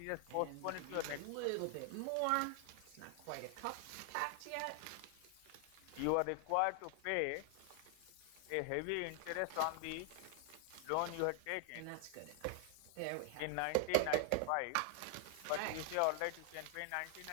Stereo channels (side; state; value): both; different; correlation 0.00